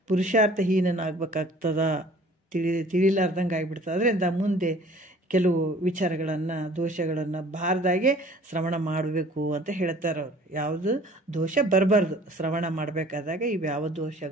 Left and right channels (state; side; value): normal; both; correlation 0.51